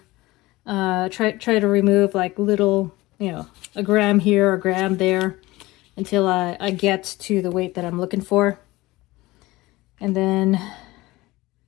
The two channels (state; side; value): quieter; right; 19.7 dB